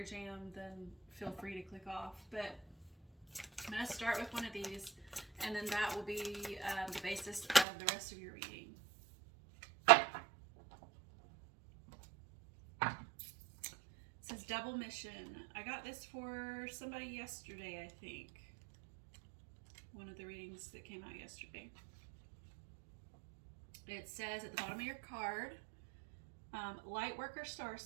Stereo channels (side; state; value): left; drops out; at 7.7 s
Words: jam, then feel free to click off. But I'm going to start with one of these, and then that will be the basis of the rest of your reading. It says double mission. I got this for somebody yesterday, I think. One of the readings that came out yesterday. It says at the bottom of your card, Lightworker